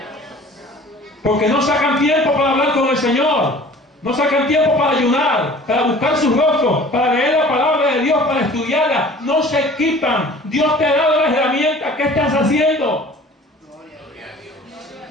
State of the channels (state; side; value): normal; both; correlation 0.47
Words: porque no sacan tiempo para hablar con el Señor, no sacan tiempo para ayunar, para buscar su rostro, para leer la palabra de Dios, para estudiarla. No se equipan. Dios te ha dado las herramientas. ¿Qué estás haciendo?